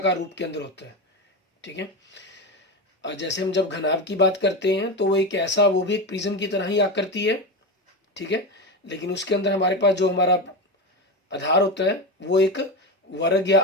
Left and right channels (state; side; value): normal; both; correlation 0.18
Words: रूप के अंदर होता है। ठीक है, और जैसे हम जब घनाभ की बात करते हैं तो वो एक ऐसा, वो भी एक प्रिज्म की तरह ही आकृति है। ठीक है, लेकिन उसके अंदर हमारे पास जो हमारा आधार होता है वो एक वर्ग या